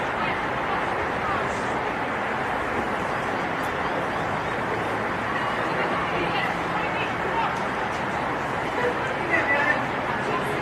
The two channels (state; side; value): identical; both; correlation 1.00